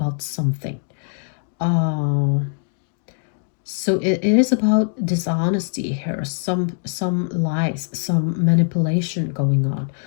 something. Uh, so it is about dishonesty here, some lies, some manipulation going on,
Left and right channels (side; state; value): right; silent; digital silence